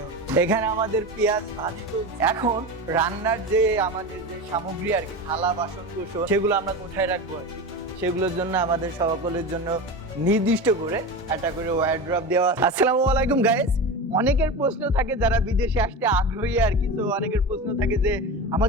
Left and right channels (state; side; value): normal; both; correlation 0.26